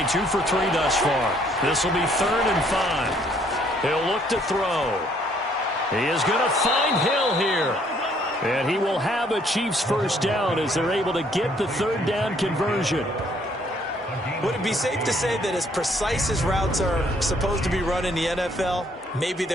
2 for 3 thus far. This will be 3rd and 5. He'll look to throw. He is going to find Hill here. And he will have a Chiefs first down as they're able to get the 3rd down conversion. Would it be safe to say that as precise as routes are supposed to be run in the NFL, maybe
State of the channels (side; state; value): both; normal; correlation 0.65